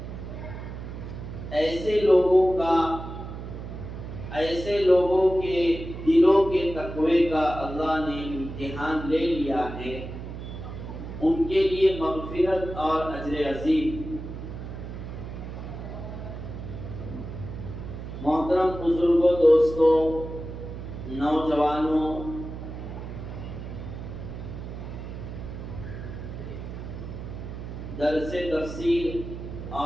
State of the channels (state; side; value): noise; right; hum, 9 dB below the sound